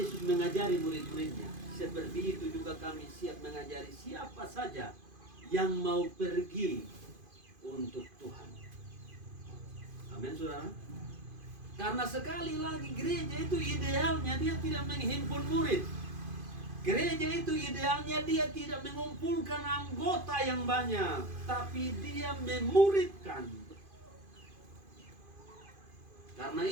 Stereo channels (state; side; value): late; left; 2.5 ms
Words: mengajari murid-muridnya, seperti itu juga kami siap mengajari siapa saja yang mau pergi untuk Tuhan. Amin, saudara. Karena sekali lagi gereja itu idealnya dia tidak menghimpun murid. Gereja itu idealnya dia tidak mengumpulkan anggota yang banyak, tapi dia memuridkan. Karena